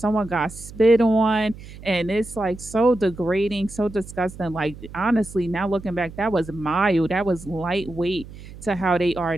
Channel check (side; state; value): right; noise; hum, 16 dB below the sound